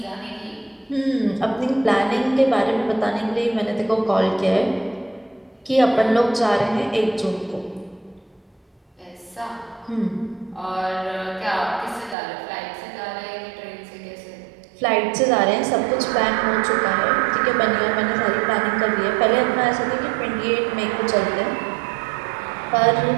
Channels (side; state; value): left; drops out; at 12.2 s